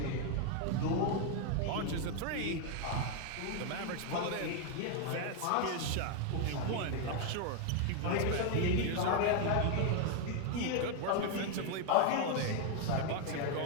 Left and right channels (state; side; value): different; both; correlation 0.01